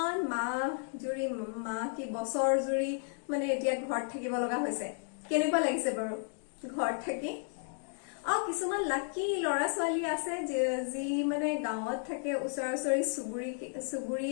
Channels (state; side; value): silent; right; 55 dB below the other